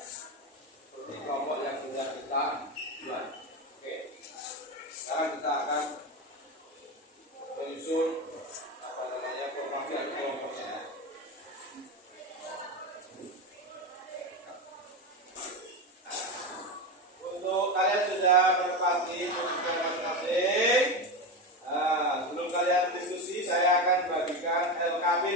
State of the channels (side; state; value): both; normal; correlation 0.18